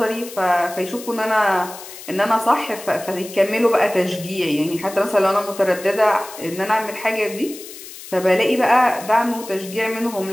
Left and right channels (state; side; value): noise; left; hiss, 15 dB below the sound